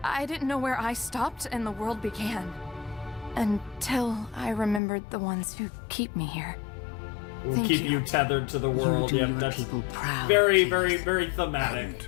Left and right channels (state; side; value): drops out; right; at 4.8 s